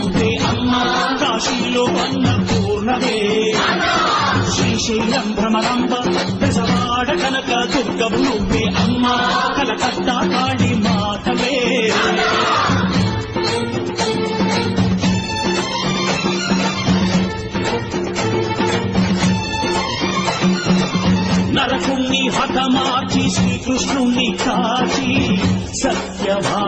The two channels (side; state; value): both; identical; correlation 1.00